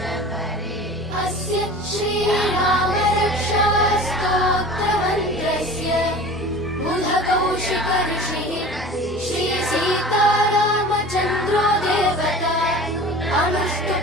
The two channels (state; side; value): normal; both; correlation 0.39